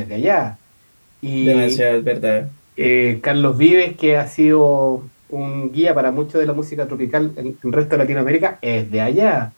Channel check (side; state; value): both; inverted; correlation -1.00